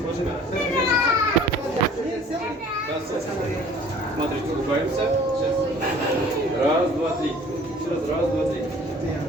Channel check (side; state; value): both; normal; correlation 0.51